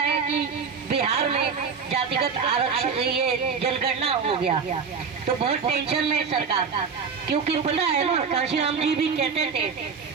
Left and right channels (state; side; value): quieter; left; 5.7 dB